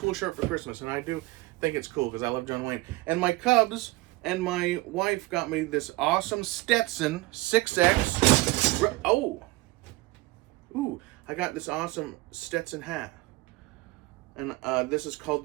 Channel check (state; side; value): quieter; left; 20.7 dB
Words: shirt for Christmas, and I do think it's cool because I love John Wayne. And my Cubs and my wife got me this awesome Stetson 6X. I got this awesome Stetson hat. And this is called